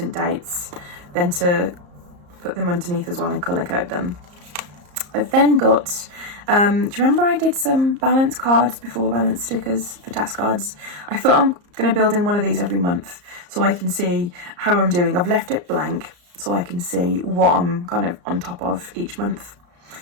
dates, then to put them underneath as well and colour code them. I've then got, do you remember I did some balance cards before, balance stickers for task cards? I thought I'm going to build in one of these every month so I can see how I'm doing. I've left it blank so I can see what I'm kind of on top of each month.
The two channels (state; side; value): late; left; 34 ms